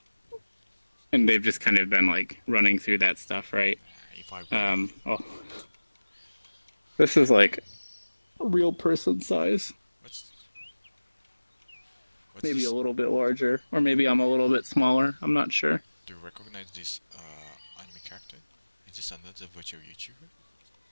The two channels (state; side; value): inverted; both; correlation -1.00